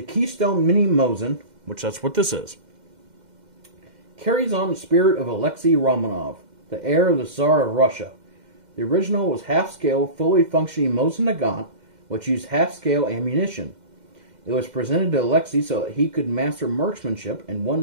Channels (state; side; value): late; left; 2.1 ms